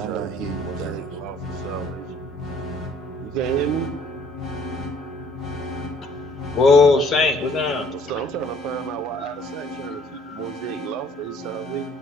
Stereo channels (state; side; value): normal; both; correlation 0.59